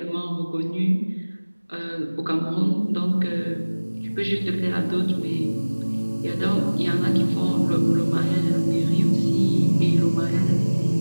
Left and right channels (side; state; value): both; inverted; correlation -1.00